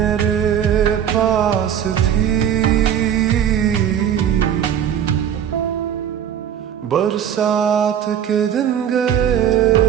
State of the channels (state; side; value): quieter; left; 9.3 dB